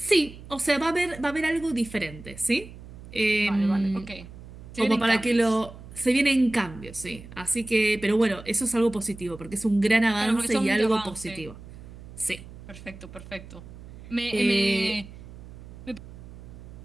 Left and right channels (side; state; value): right; noise; hum, 16 dB below the sound